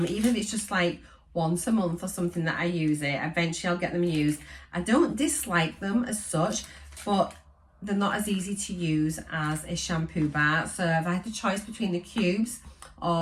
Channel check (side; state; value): both; identical; correlation 1.00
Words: even if it's just like once a month or something that I use it. Eventually I'll get them used. I don't dislike them as such, but they're not as easy to use as a shampoo bar. So if I had the choice between the cubes